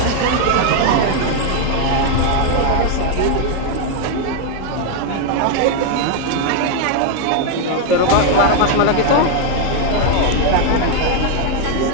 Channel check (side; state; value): both; different; correlation 0.00